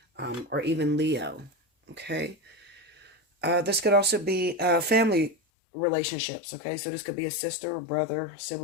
or even Leo, okay? This could also be family relationships, okay? So this could be a sister, a brother,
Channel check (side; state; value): right; drops out; at 5.4 s